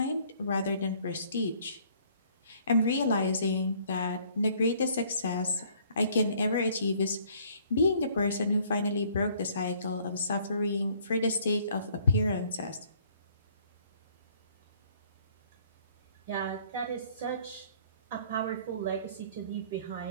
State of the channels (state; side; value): inverted; both; correlation -0.60